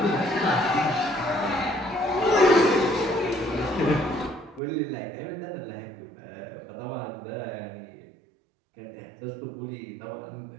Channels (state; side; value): drops out; left; at 4.6 s